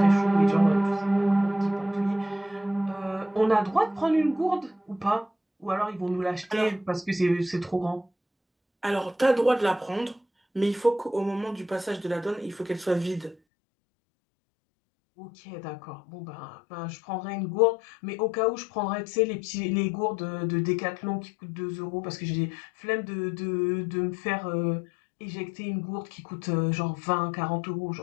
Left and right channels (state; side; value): drops out; right; at 13.4 s